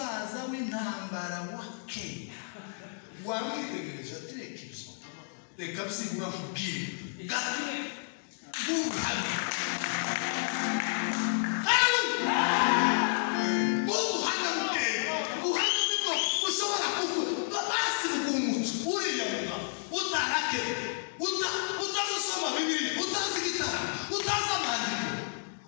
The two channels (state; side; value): silent; right; digital silence